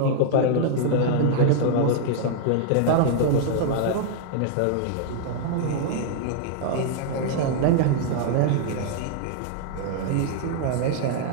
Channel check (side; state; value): both; different; correlation -0.01